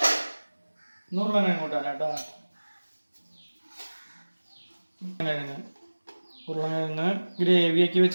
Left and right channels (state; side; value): inverted; both; correlation -1.00